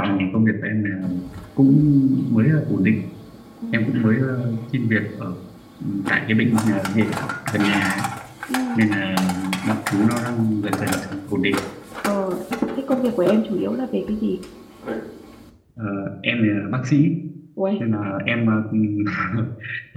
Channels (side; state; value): both; identical; correlation 1.00